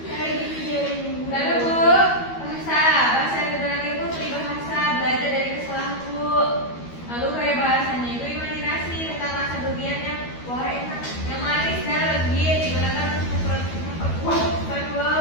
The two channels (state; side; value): late; right; 12 ms